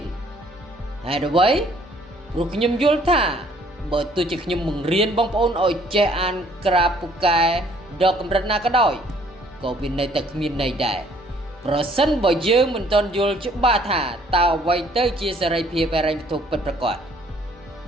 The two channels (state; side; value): normal; both; correlation 0.61